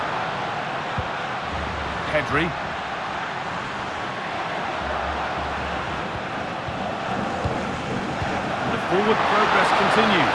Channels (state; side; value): identical; both; correlation 1.00